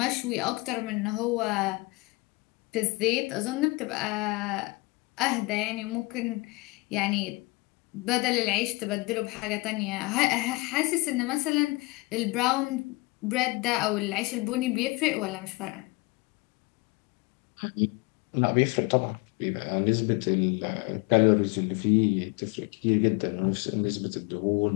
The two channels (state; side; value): quieter; right; 24.9 dB